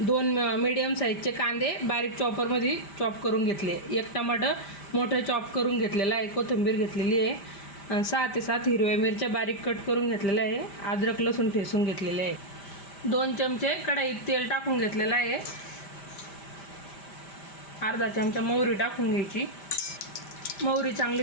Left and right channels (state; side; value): late; right; 5.1 ms